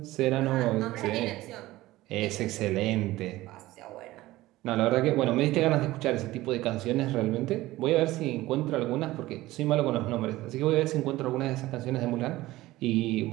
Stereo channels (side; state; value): left; quieter; 17.4 dB